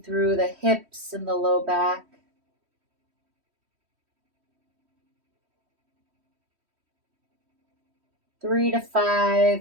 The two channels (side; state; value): left; late; 3.1 ms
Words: through the hips and the low back. Three to